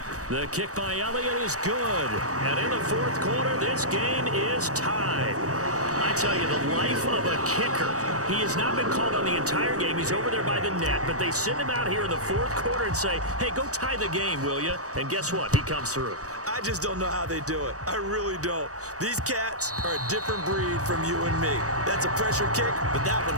The kick by Elliott is good. And in the 4th quarter, this game is tied. I tell you, the life of a kicker. He has not been called on the entire game. He's over there by the net, but they send him out here in the 4th quarter and say, hey, go tie the game, will you? And guess what? He comes through. I just don't know how they do it. I really don't. These cats are a different breed from you and me. That's a pressure kick, but that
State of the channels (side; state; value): left; late; 0.66 ms